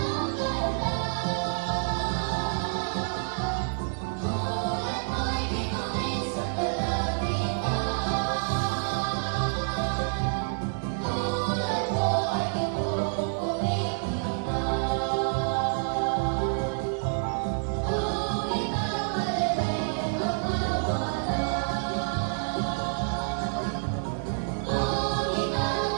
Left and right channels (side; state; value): left; silent; digital silence